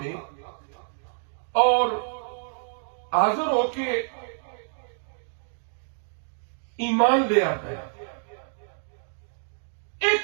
اور حاضر ہو کے ایمان لے آتا ہے۔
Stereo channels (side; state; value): left; silent; digital silence